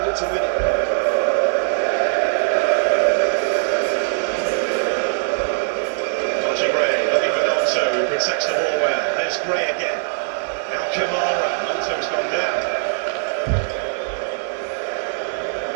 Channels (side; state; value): left; silent; digital silence